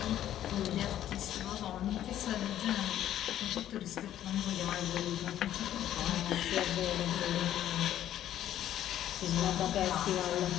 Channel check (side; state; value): right; quieter; 11.8 dB